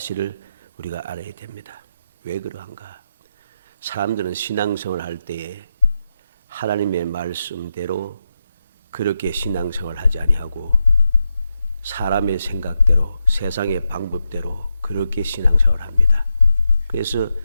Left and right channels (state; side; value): inverted; both; correlation -0.86